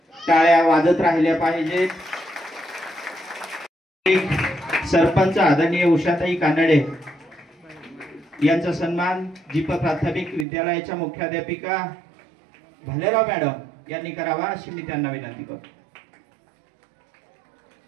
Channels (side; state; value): left; drops out; at 10.5 s